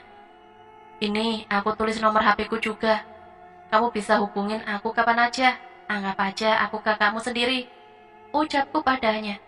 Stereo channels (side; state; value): both; identical; correlation 1.00